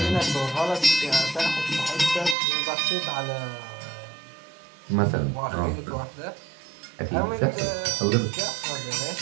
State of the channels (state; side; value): drops out; left; at 2.4 s